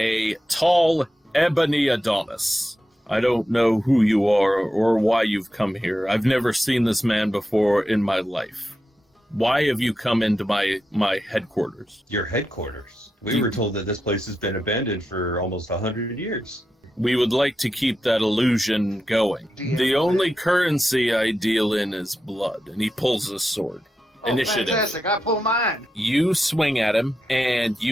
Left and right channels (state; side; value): normal; both; correlation 0.88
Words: tall ebony Adonis. I don't know who you are or why you've come here. I've never seen this man before in my life. Why have you come into my headquarters? Your headquarters? We were told that this place has been abandoned for almost 100 years. We would like to keep that illusion going. The only currency I deal in is blood. And he pulls his sword. Initiative. Fantastic, I pull mine. You swing at him, and